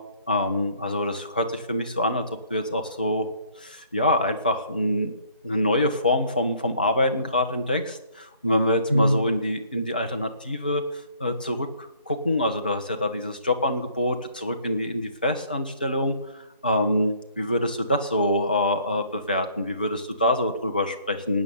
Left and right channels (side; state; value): both; inverted; correlation -0.59